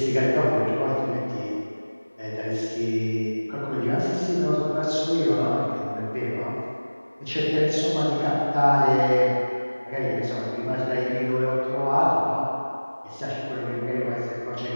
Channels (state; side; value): inverted; both; correlation -1.00